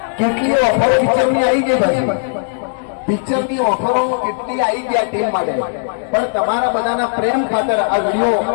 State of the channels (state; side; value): silent; right; 68 dB below the other